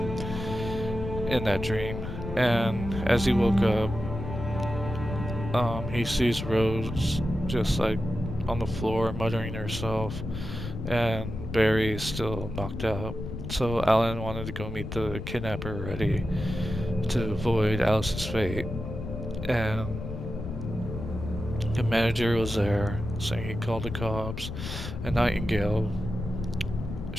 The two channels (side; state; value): left; noise; rumble, 7 dB below the sound